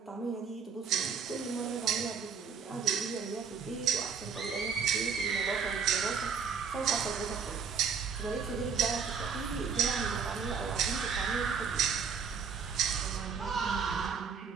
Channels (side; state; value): left; quieter; 6.1 dB